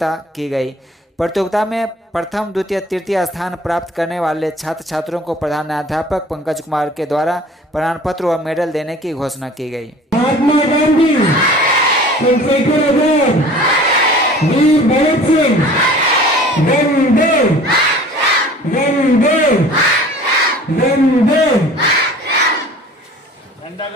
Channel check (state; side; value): normal; both; correlation 0.46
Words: की गई। प्रतियोगिता में प्रथम, द्वितीय, तृतीय स्थान प्राप्त करने वाले छात्र छात्रों को प्रधानाध्यापक पंकज कुमार के द्वारा प्रमाण पत्र व मेडल देने की घोषणा की गई। महात्मा गांधी, चंद्रशेखर आजाद, वीर भगत सिंह, वंदे वंदे वंदे।